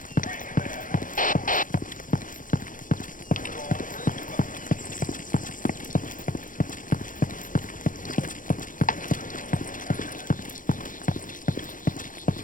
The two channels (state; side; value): late; right; 0.39 ms